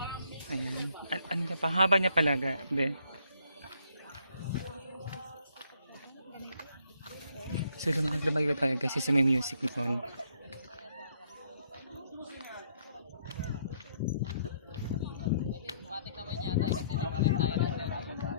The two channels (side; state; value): both; inverted; correlation -0.68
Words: Ayan. Ano ka pa? Haba niya palaga. Be. So lumayo tayo kasi sa may music noon. Matik naman yata kasi di pa rin tayo natin.